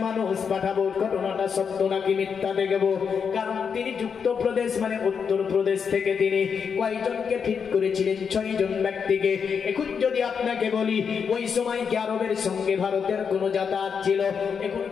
মানুষ পাঠাবো, ঘটনাটা সত্য নাকি মিথ্যা দেখবো। কারণ তিনি যুক্তপ্রদেশ মানে উত্তর প্রদেশ থেকে তিনি কয়জনকে ফিট করেছিলেন? 6 জন ব্যক্তিকে। এখন যদি আপনাকে বলি ওই সময় কি আরবের সঙ্গে ভারতের কোনো যাতায়াত ছিল?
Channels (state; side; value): quieter; right; 6.5 dB